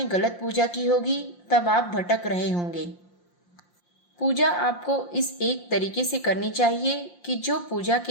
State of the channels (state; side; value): late; right; 5.7 ms